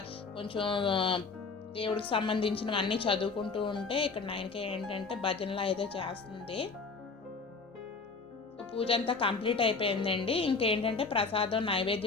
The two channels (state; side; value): quieter; right; 4.5 dB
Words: కొంచెం దేవుడికి సంబంధించినవన్నీ చదువుకుంటూ ఉంటే ఇక్కడ నైన్క ఏంటంటే భజనలో అయితే చేస్తుంది. పూజ అంతా కంప్లీట్ అయిపోయిందండి. ఇంకేంటంటే ప్రసాదం